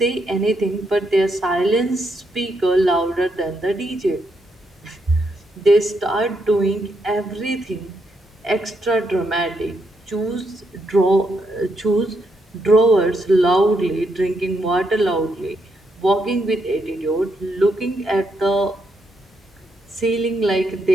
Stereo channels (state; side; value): normal; both; correlation 0.79